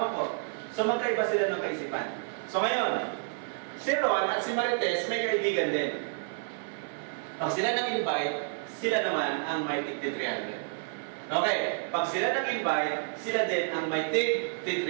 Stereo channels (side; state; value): left; silent; 58 dB below the other